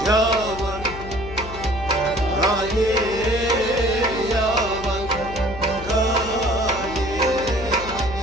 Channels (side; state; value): left; noise; hum, 12 dB below the sound